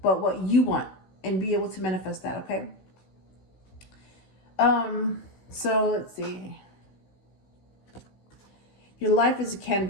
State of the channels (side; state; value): right; late; 16 ms